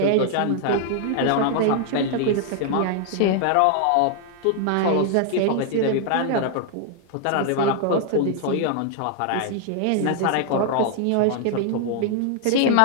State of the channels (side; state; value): both; different; correlation 0.00